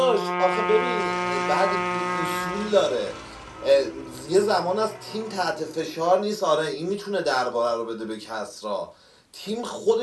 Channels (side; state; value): both; identical; correlation 1.00